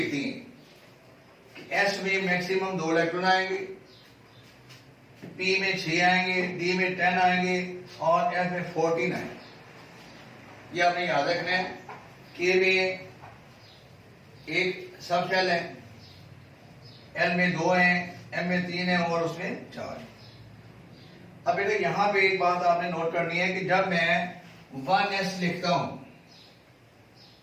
हैं। एस में मैक्सिमम 2 इलेक्ट्रॉन आएंगे, पी में 6 आएंगे, डी में 10 आएंगे और एफ में 14 आएंगे। ये आपने याद रखना है। के में एक सब शेल है, एल में 2 हैं, एम में 3 है और उसमें 4। अब बेटा यहां पे एक बात आपने नोट करनी है कि जब मैं 1s लिखता हूं,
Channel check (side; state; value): both; identical; correlation 1.00